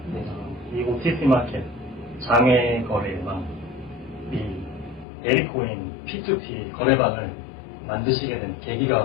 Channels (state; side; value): drops out; right; at 5.1 s